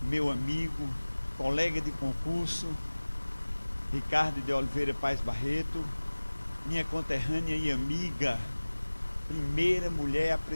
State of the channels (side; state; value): both; inverted; correlation -1.00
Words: meu amigo, colega de concurso, Ricardo de Oliveira Paes Barreto, minha conterrânea e amiga, primeira mulher a